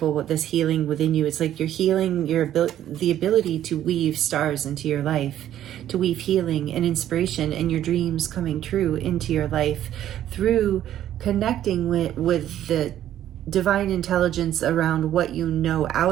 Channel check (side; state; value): left; quieter; 11.7 dB